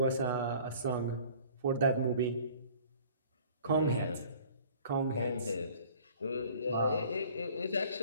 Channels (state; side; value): inverted; both; correlation -0.50